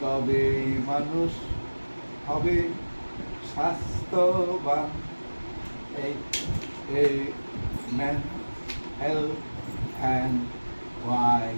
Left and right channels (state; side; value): inverted; both; correlation -1.00